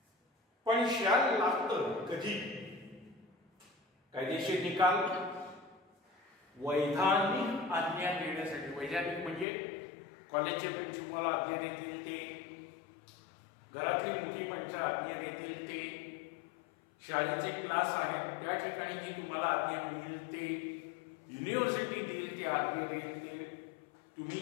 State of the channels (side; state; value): right; drops out; at 9.5 s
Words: पण शॅल लागतं कधी? कायदेशीर निकाल, वैधानिक आज्ञा देण्यासाठी, वैधानिक म्हणजे कॉलेजचे प्रिन्सिपल आज्ञा देतील ते, घरातली मोठी माणसं आज्ञा देतील ते, शाळेचे क्लास आहेत त्या ठिकाणी जी तुम्हाला आज्ञा मिळेल ते, युनिव्हर्सिटी देईल ते आज्ञा देईल ते, तुम्ही